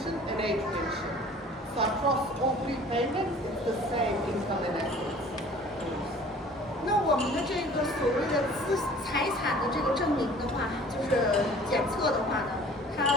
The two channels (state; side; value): normal; both; correlation 0.48